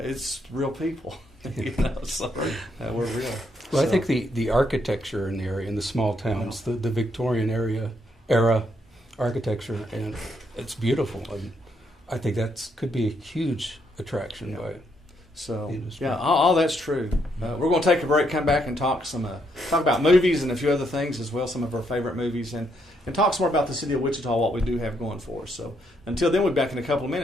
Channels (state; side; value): normal; both; correlation 0.75